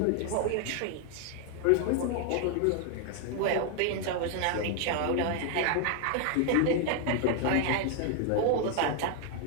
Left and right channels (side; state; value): both; different; correlation 0.00